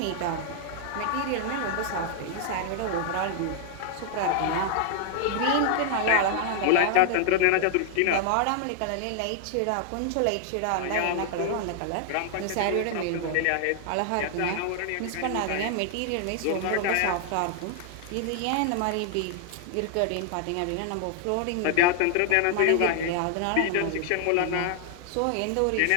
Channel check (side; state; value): both; different; correlation 0.00